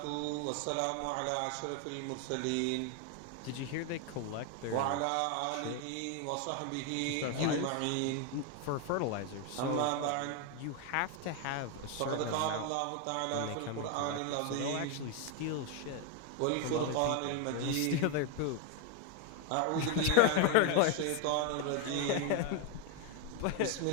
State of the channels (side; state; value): both; different; correlation 0.01